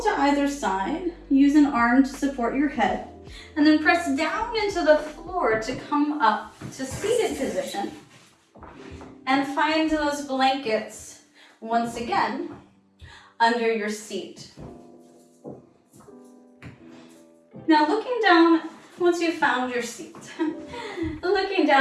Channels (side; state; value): both; identical; correlation 1.00